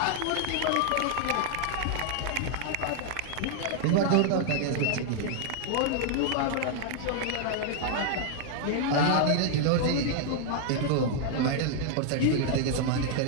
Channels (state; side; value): different; both; correlation 0.00